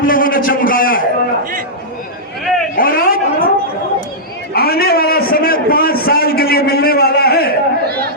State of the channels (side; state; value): both; normal; correlation -0.12